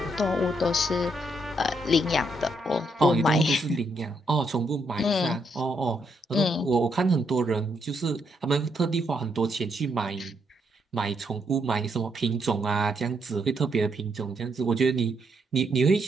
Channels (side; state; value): both; normal; correlation 0.76